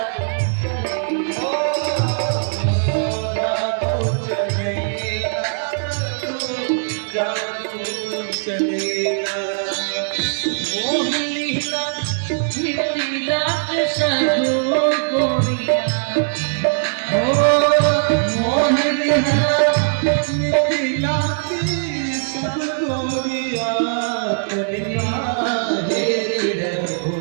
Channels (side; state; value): left; silent; digital silence